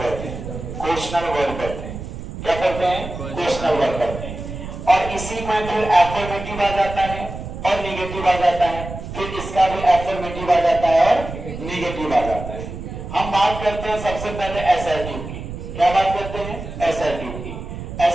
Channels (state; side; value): noise; right; rumble, 9 dB below the sound